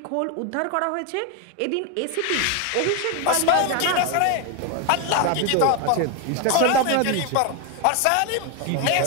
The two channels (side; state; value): both; different; correlation 0.01